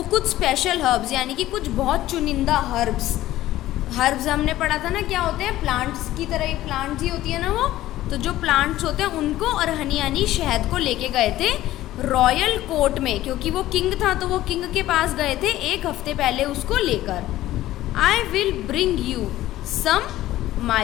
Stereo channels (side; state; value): right; quieter; 14.9 dB